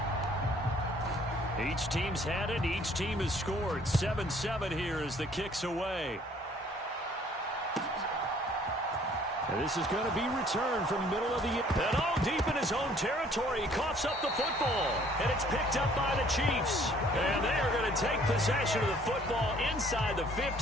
Each team's had it. Each team has scored. 7-7 here as the kick's away. And this is going to be returned from middle of the... And deep in his own territory. He coughs up the football. And it's picked up by the Chiefs. And they are going to take possession of the football inside the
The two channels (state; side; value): normal; both; correlation 0.58